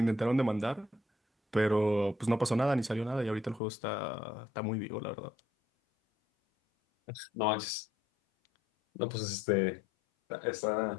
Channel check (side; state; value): right; drops out; at 3.6 s